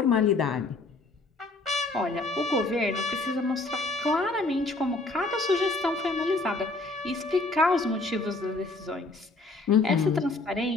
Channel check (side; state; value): right; quieter; 3.2 dB